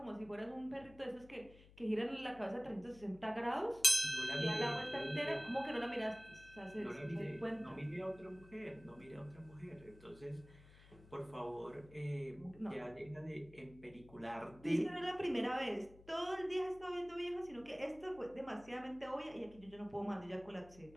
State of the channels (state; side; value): noise; left; hum, 21 dB below the sound